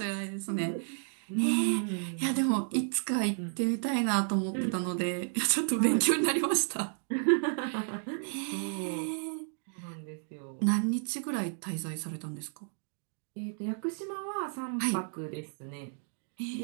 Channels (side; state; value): left; silent; 56 dB below the other